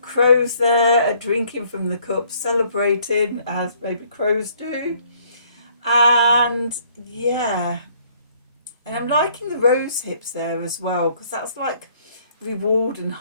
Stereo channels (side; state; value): both; inverted; correlation -0.63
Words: crows there drinking from the cup, celebrating as baby crows do. And yeah, and I'm liking the rose hips there as well, because that's like reward and